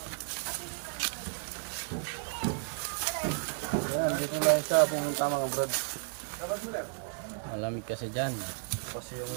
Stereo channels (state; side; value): silent; left; 56 dB below the other